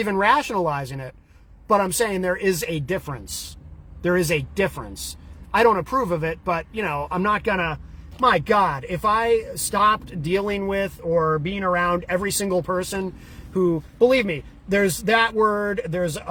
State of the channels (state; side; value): identical; both; correlation 1.00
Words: rationalizing it, but I'm saying there is a difference. There is a difference. I don't approve of it, but, you know, I'm not gonna, my God, if I stopped dealing with or being around every single person who, believe me, there's that word, there's